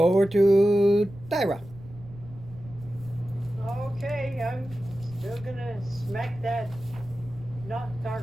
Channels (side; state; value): right; noise; rumble, 18 dB below the sound